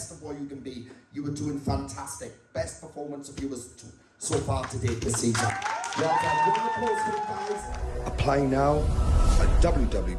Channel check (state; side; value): identical; both; correlation 1.00